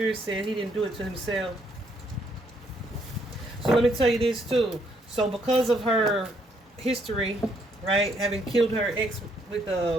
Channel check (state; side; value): normal; both; correlation 0.71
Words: said he didn't do it to himself. So let me tell you this too. So because of her history, right, having killed her ex with